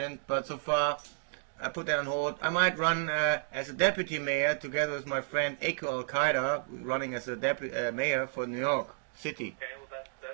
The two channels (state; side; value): silent; left; digital silence